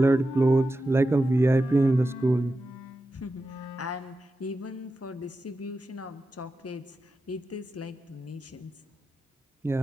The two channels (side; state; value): both; normal; correlation 0.91